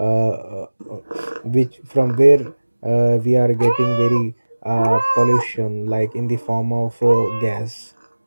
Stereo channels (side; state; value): both; inverted; correlation -1.00